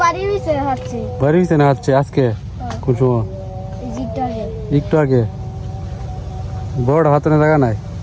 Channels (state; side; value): identical; both; correlation 1.00